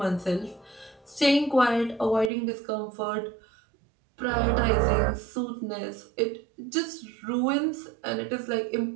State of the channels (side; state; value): left; drops out; at 2.3 s